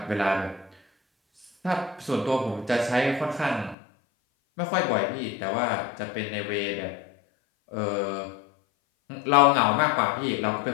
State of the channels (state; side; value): drops out; right; at 3.8 s